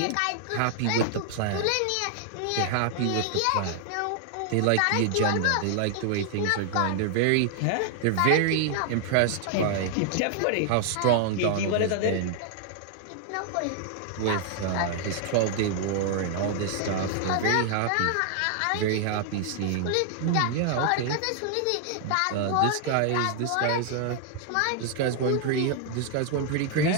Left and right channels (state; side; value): different; both; correlation 0.00